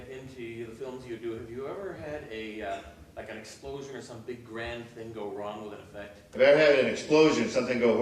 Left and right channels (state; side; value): identical; both; correlation 1.00